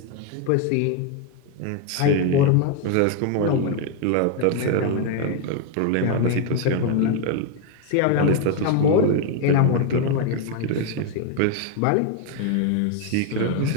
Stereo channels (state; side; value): different; both; correlation 0.01